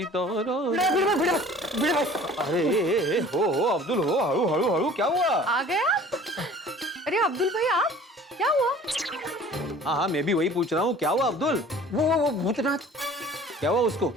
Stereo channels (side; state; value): both; normal; correlation 0.47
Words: हो अब्दुल हो, हळू हळू हळू, क्या हुआ? आ गया? अरे अब्दुल भाई आप, क्या हुआ? हाँ मैं भी वही पूछ रहा हूँ, क्या हुआ अब्दुल? वो भूतनाथ, क्या हुआ उसको?